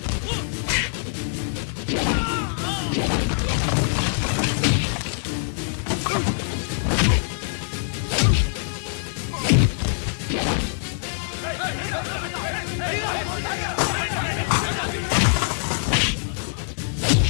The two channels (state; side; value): silent; right; digital silence